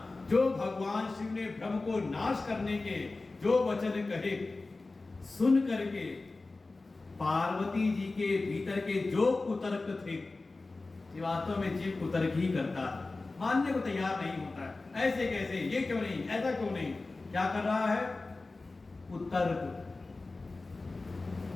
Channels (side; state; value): right; quieter; 3.4 dB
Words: जो भगवान शिव ने भ्रम को नाश करने के जो वचन कहे, सुन करके पार्वती जी के भीतर के जो कुतर्क थे, वास्तव में जीव कुतर्क ही करता है, मानने को तैयार नहीं होता है। ऐसे कैसे, ये क्यों नहीं, ऐसा क्यों नहीं, क्या कर रहा है, कुतर्क।